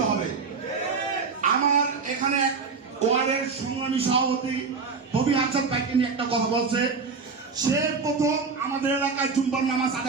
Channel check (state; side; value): quieter; left; 4.9 dB